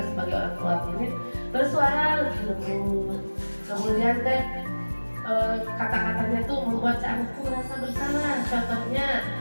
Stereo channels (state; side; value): inverted; both; correlation -1.00